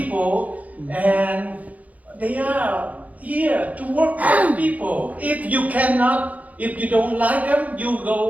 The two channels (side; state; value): left; late; 0.073 ms